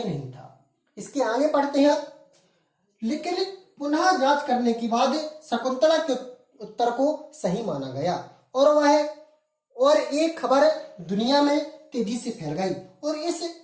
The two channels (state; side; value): identical; both; correlation 1.00